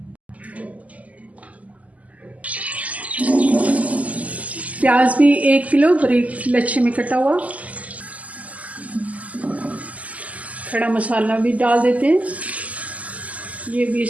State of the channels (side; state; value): left; late; 0.073 ms